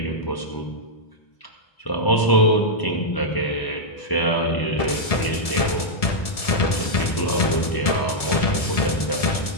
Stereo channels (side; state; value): right; late; 1.7 ms